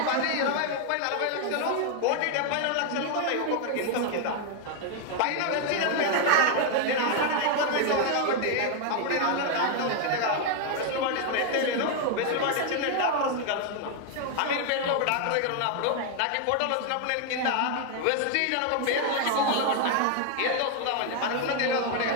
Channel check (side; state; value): both; different; correlation 0.01